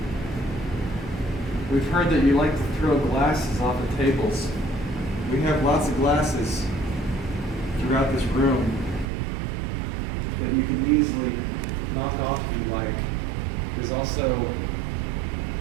We've heard that you like to throw glasses off of tables. We have lots of glasses throughout this room that you can easily knock off if you like. There's also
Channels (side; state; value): left; drops out; at 9.1 s